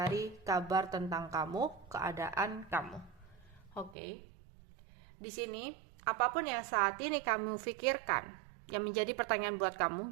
kabar tentang kamu, keadaan kamu. Oke. Di sini, apapun yang saat ini kamu pikirkan, yang menjadi pertanyaan buat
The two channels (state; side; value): drops out; left; at 4.0 s